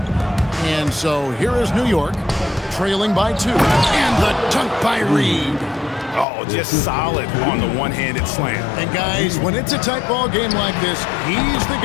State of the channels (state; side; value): drops out; right; at 6.2 s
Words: And so here is New York, trailing by 2. And the dunk by Reed. Oh, just solid on the one-handed slam. And guys, when it's a tight ball game like this, he's the